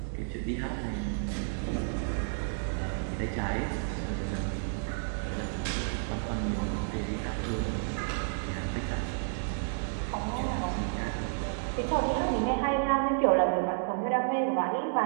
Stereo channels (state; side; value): silent; left; digital silence